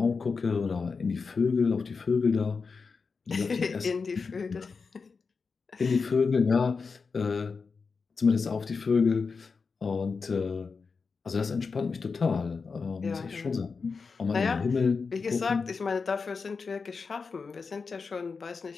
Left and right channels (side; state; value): right; quieter; 4.9 dB